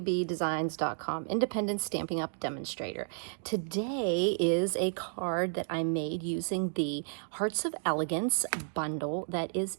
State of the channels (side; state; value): left; silent; digital silence